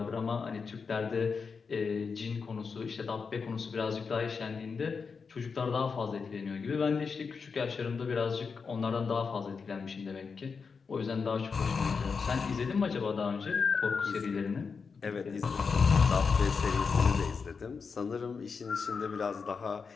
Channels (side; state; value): right; quieter; 5.3 dB